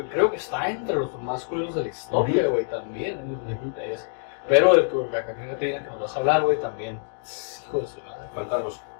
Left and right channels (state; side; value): silent; right; digital silence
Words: que está entre los más culeros de la historia, güey, también. Pero el huracán que nos vas a hablar, güey, también. Hijo de su madre. Cuéntanos.